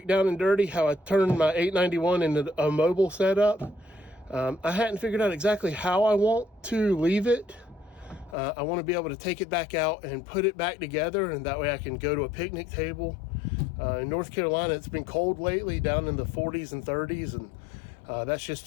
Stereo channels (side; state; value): right; drops out; at 8.3 s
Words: down and dirty, how I turned my 891 into a mobile setup. I hadn't figured out exactly how I want to leave it. I want to be able to take it back out and put it back together, and that way I can go to a picnic table. In North Carolina, it's been cold lately, down in the 40s and 30s, and that's just